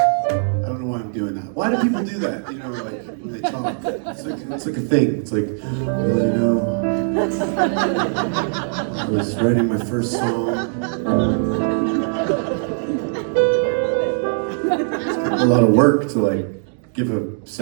don't know why I'm doing that. Why do people do that? You know, like when they talk, it's like a thing. It's like, well, you know, I was writing my first song. It's kind of a lot of work to like give a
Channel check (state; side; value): silent; left; digital silence